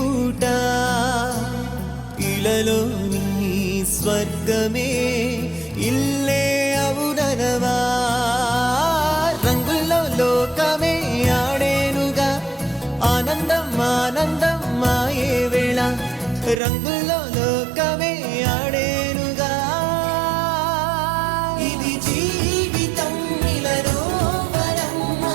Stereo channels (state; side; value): drops out; left; at 16.6 s